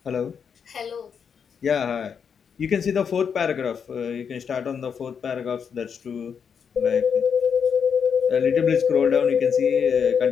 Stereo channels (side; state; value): right; quieter; 6.9 dB